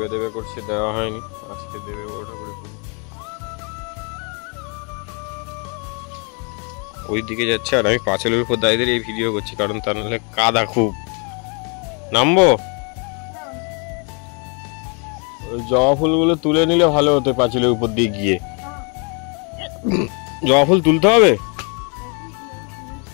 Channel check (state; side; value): quieter; right; 35.5 dB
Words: দেবে করছে, দেওয়া হয়নি, আজকে দেবে বড় ঠাকুরের পুজো। ওই দিকে যাচ্ছে আর আমি পাঁচিলের উপর দাঁড়িয়ে এই ভিডিও করছি, কারণ তা নাহলে কাদা খুব। নামবো? ওই জবা ফুলগুলো তুলে নিলে ভালো হতো পাঁচিলের উপর দিয়ে গিয়ে। জবা ফুল তুলতে হবে?